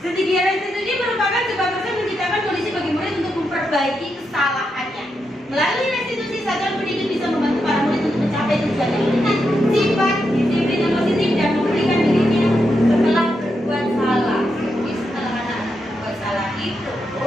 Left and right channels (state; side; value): normal; both; correlation 0.84